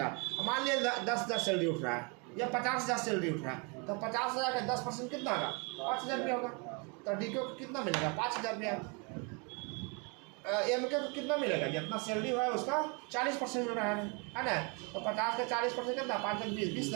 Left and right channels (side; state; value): left; quieter; 32.7 dB